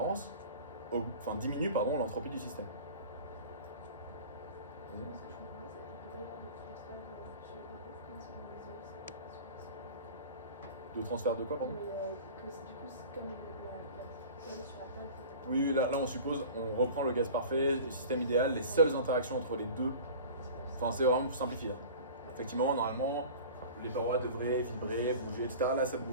diminue l'entropie du système. De transfert de quoi, pardon? Oui, là on suppose, on reprend le gaz parfait, le système idéal, les seules interactions entre les deux. Enfin, c'est vraiment pour simplifier. Effectivement, normalement, les parois devraient vibrer, bouger, etc. Là, ça ne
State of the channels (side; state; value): both; inverted; correlation -0.39